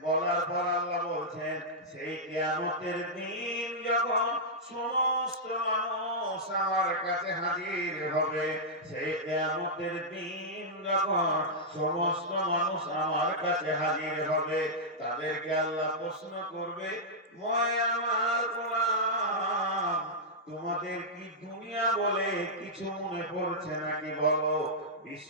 বলার পর আল্লাহ বলছেন সেই কিয়ামতের দিন যখন সমস্ত মানুষ আমার কাছে হাজির হবে, সেই কিয়ামতের দিন যখন সমস্ত মানুষ আমার কাছে হাজির হবে, তাদেরকে আল্লাহ প্রশ্ন করবে, মই আমার গোলাম, তোমাদের কি দুনিয়া বলে কিছু মনে পড়ছে নাকি? বলো, 20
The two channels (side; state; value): both; normal; correlation -0.08